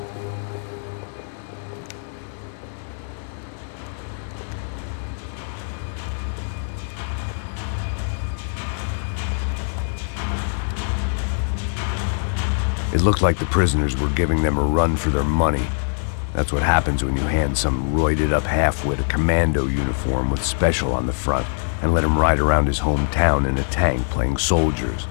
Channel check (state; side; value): silent; right; digital silence